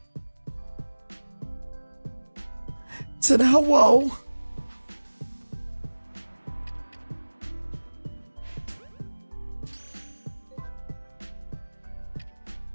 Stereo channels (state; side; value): inverted; both; correlation -1.00